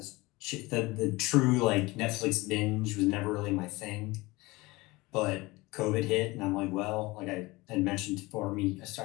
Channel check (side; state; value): right; quieter; 22.0 dB